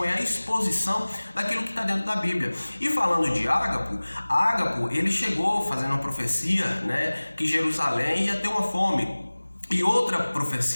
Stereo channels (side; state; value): both; inverted; correlation -1.00